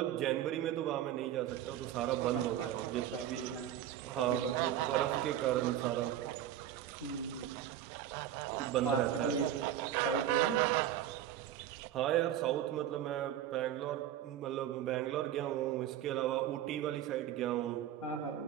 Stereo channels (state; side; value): quieter; left; 11.1 dB